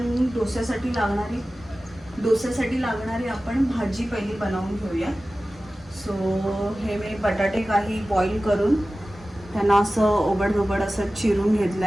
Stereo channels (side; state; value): left; noise; rumble, 25 dB below the sound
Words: डोस्यासाठी लागणारी आपण भाजी पहिली बनवून घेऊया. सो हे मी बटाटे काही बॉईल करून त्यांना असं ओबड असं चिरून घेतलं